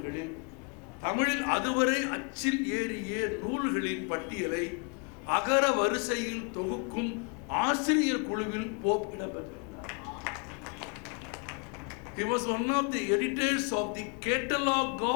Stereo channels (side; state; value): right; quieter; 37.8 dB